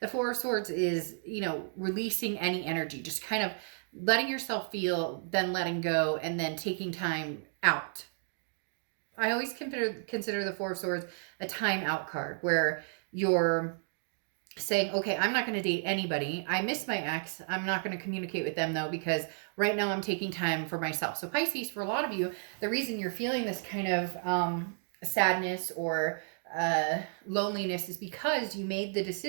Four of Swords is, releasing any energy, just kind of letting yourself feel, then letting go, and then taking time out. I always consider the Four of Swords a time out card, where you're saying, okay, I'm not going to date anybody. I miss my ex. I'm not going to communicate with them though, because right now I'm taking time for myself. So Pisces, for a lot of you, the reason you're feeling this kind of sadness or loneliness is because you made the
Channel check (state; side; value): silent; left; digital silence